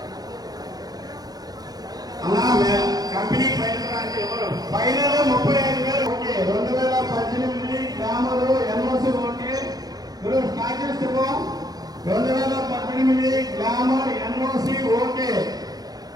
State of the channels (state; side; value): late; left; 0.19 ms